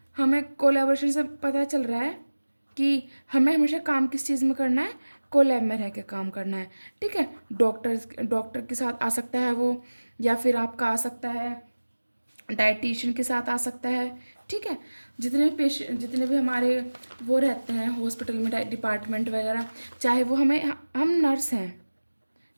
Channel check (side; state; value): both; inverted; correlation -1.00